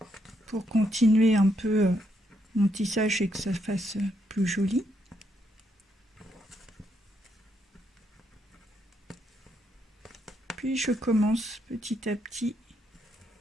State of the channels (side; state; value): both; normal; correlation 0.76